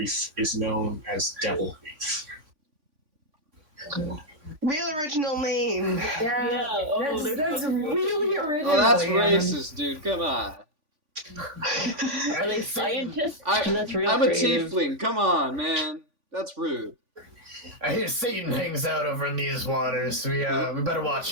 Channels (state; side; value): late; left; 3.5 ms